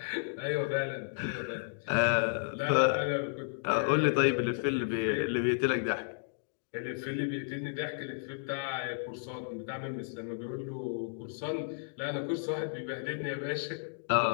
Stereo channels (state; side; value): silent; right; digital silence